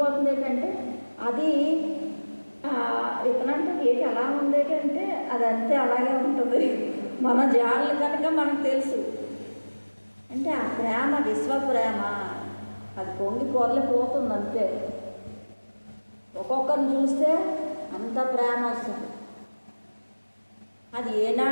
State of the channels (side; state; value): both; inverted; correlation -1.00